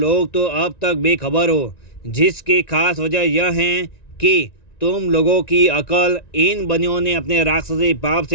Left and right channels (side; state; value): right; late; 1.9 ms